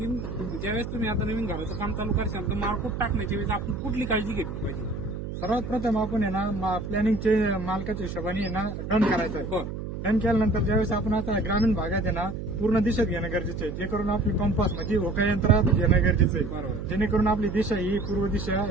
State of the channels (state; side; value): noise; right; hum, 7 dB below the sound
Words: ज्यावेळेस तुम्ही आता नवीन घराचं काम चालू करशाल तर मारकूट टाकण्याच्या वेळेस आपण कुठली काळजी घेतली पाहिजे. सर्वात प्रथम आपण आहे ना प्लॅनिंगचे मालकाच्या हिशोबाने आहे ना डन करायचं आहे. बरं. डन केल्यानंतर ज्यावेळेस आपण आता ग्रामीण भागात आहे ना पूर्ण दिशेत घेणं गरजेचं आहे, जे करून आपली कंपास म्हणजे होका यंत्रात घेणं गरजेचं आहे. बरोबर. जेणेकरून आपली दिशा ही पूर्व दिशा